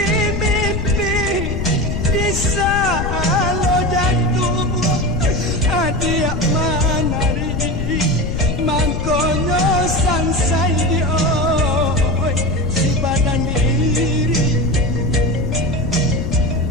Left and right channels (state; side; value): noise; left; rumble, 2 dB below the sound